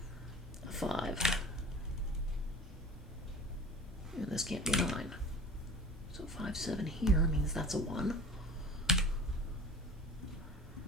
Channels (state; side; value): normal; both; correlation 0.40